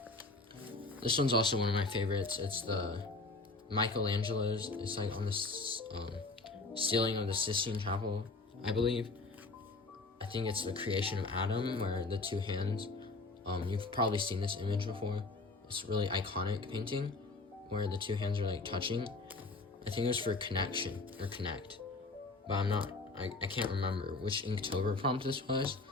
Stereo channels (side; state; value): right; quieter; 3.4 dB